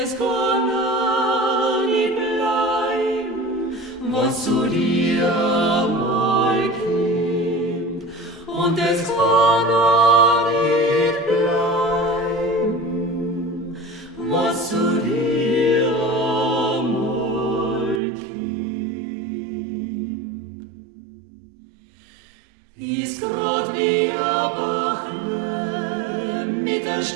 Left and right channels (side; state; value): left; drops out; at 18.0 s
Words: kann auch nicht bleiben, was zu dir mal kommt, und es kann auch nicht bleiben, was zu dir mal kommt. Ist grad wie a Bachle mit a